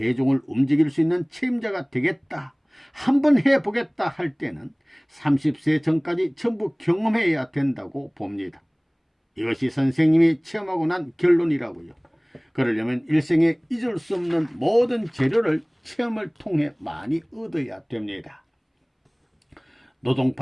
움직일 수 있는 책임자가 되겠다. 한번 해보겠다 할 때는 30세 전까지 전부 경험해야 된다고 봅니다. 이것이 선생님이 체험하고 난 결론이라고요. 그러려면 일생에 잊을 수 없는 모든 재료를 체험을 통해 많이 얻어야 됩니다.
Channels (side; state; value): both; identical; correlation 1.00